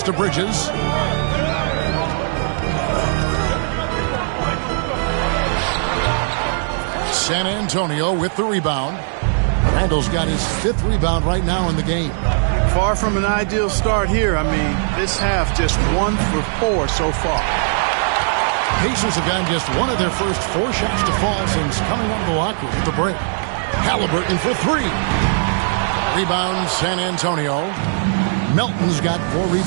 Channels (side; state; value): left; silent; digital silence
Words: to Bridges. San Antonio with the rebound. Randall's got his 5th rebound right now in the game. Far from an ideal start here. I mean, this half just 1 for 4 so far. Pacers have gotten just 1 of their first 4 shots to fall since coming out of the locker room at the break. Halliburton for 3. Rebound San Antonio. Melton's got 4